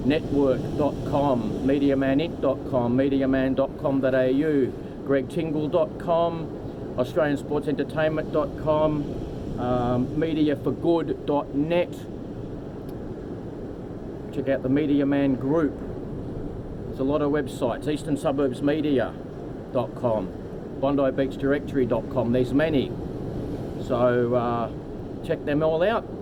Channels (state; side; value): identical; both; correlation 1.00